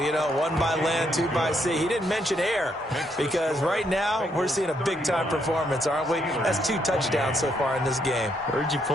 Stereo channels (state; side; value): normal; both; correlation 0.75